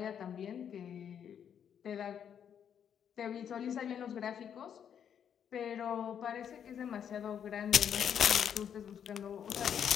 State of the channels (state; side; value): quieter; right; 8.5 dB